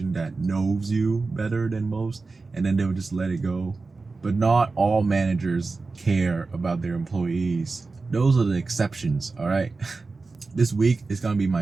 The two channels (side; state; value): left; quieter; 3.9 dB